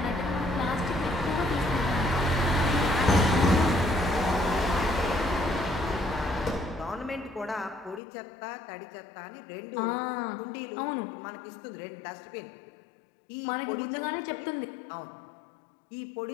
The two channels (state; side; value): drops out; right; at 8.0 s